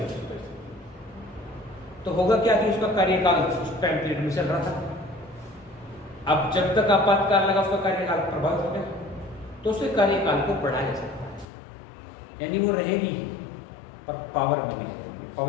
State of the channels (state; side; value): drops out; right; at 11.5 s